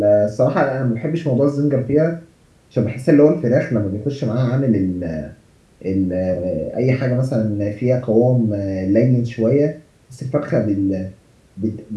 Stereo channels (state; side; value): identical; both; correlation 1.00